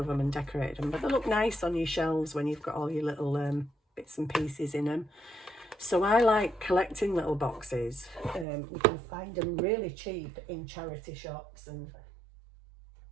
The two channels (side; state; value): left; drops out; at 8.5 s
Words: them and decorated them, but they look nice on your shelves when you've got all your little bits and pieces in them. So I like collecting little boxes. You can find them really cheap in charity shops and